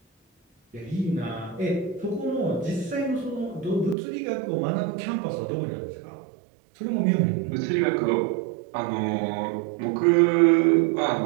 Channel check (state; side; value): drops out; left; at 4.0 s